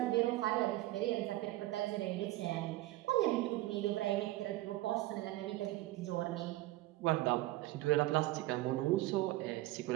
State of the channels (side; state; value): left; quieter; 17.5 dB